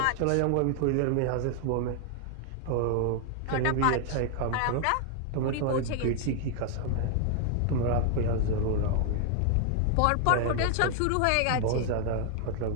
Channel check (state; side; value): different; both; correlation 0.00